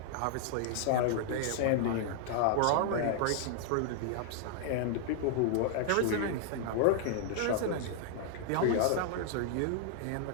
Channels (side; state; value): both; different; correlation -0.01